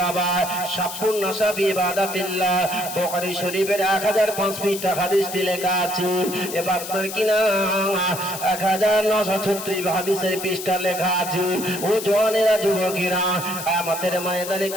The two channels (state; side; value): noise; left; hiss, 9 dB below the sound